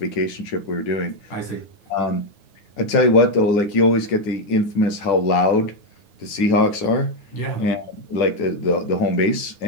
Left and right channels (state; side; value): late; right; 9.5 ms